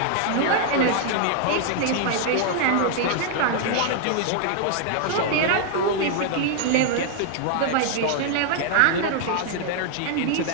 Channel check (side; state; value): both; different; correlation 0.00